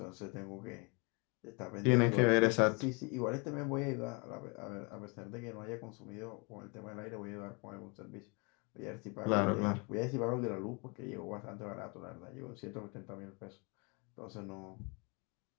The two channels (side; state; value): right; quieter; 31.3 dB